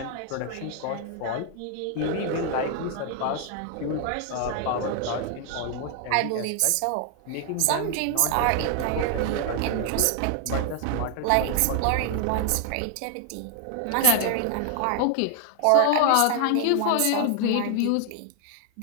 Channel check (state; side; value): different; both; correlation 0.00